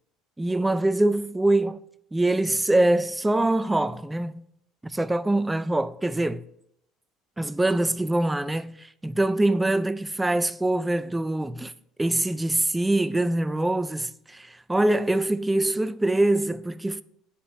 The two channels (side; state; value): both; normal; correlation 0.98